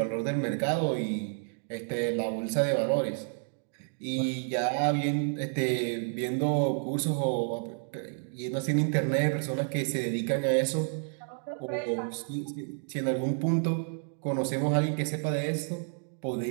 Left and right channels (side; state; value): left; silent; 58 dB below the other